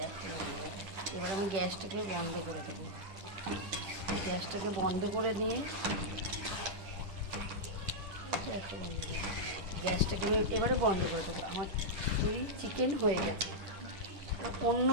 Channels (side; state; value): left; late; 10 ms